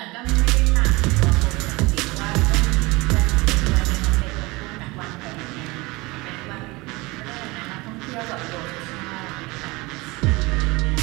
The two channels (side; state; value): left; quieter; 23.3 dB